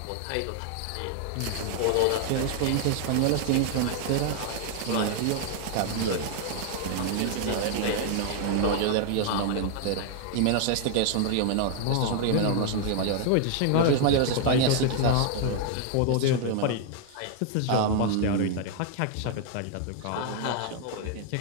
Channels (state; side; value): different; both; correlation 0.00